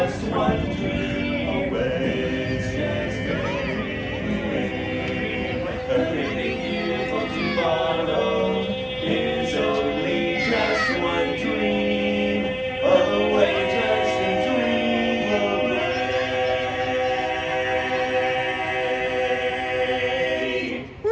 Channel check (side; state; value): both; identical; correlation 1.00